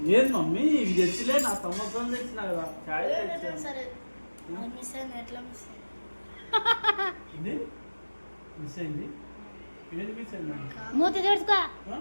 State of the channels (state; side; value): inverted; both; correlation -1.00